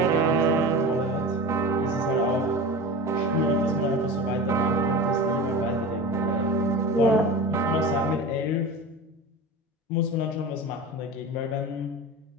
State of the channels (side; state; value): both; normal; correlation 0.31